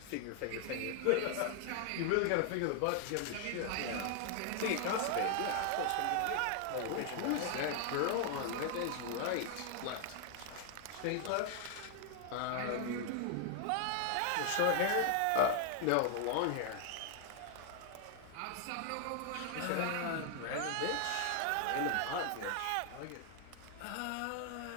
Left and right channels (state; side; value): different; both; correlation 0.00